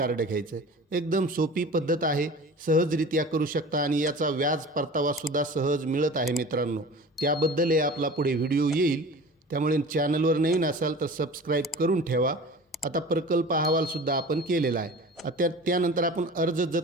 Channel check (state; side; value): normal; both; correlation 0.39